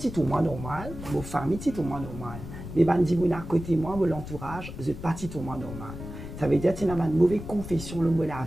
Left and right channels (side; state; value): left; noise; rumble, 10 dB below the sound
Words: tout le monde normal, ma famille est tout le monde normal. Mais quand je dis à côté de moi, l'entourage, je ne suis pas tout le monde normal. Ça veut dire que tu as une mauvaise confession de la